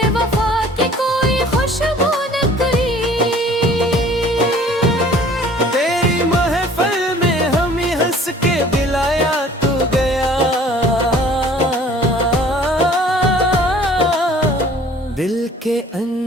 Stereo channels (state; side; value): normal; both; correlation 0.52